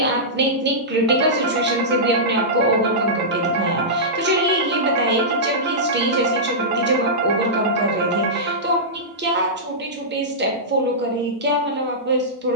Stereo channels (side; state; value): both; normal; correlation -0.14